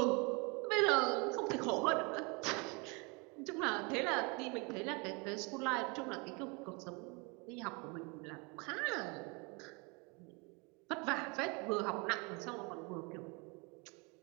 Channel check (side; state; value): left; quieter; 29.9 dB